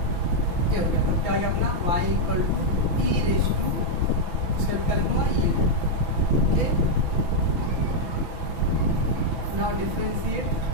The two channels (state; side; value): late; left; 6.0 ms